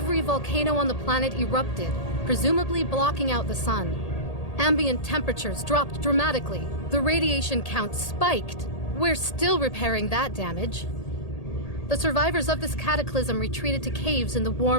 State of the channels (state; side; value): late; right; 1.8 ms